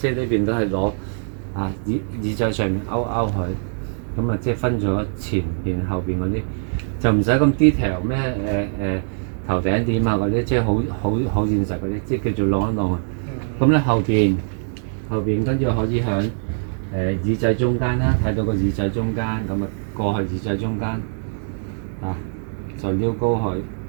係呢邊都係攞啊耳仔上面勾佢，咁啊即係分咗前邊後邊嗰啲，就唔使咁 detail 咩頭頂點啊嗰啲，即係好現實嗰啲，即係叫做晾一晾啊。咁咧後邊跟住可以響耳仔中間啦，睇到個耳仔中間，咁啊過去耳仔中間啊就撩高佢，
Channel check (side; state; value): left; silent; digital silence